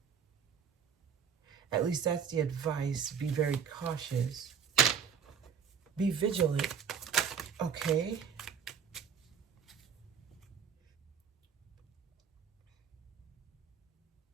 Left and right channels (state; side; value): quieter; left; 7.1 dB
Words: At least that's the advice. Be very cautious. Be vigilant. Okay.